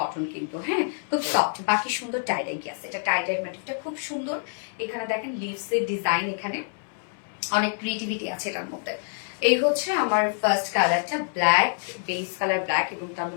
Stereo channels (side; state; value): right; silent; digital silence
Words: কিন্তু। হ্যাঁ, খুব সফট, বাকি সুন্দর টাইডাই আছে। এটা টাইডাই ম্যাটিকটা খুব সুন্দর। এখানে দেখেন লিভস এর ডিজাইন, এখানে অনেক ক্রিয়েটিভিটি আছে এটার মধ্যে। এই হচ্ছে আমার ফার্স্ট কালারটা, ব্ল্যাক বেস কালার ব্ল্যাক এবং তার